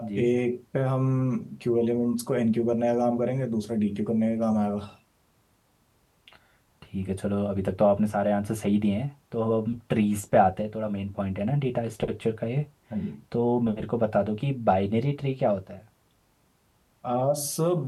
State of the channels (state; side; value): identical; both; correlation 1.00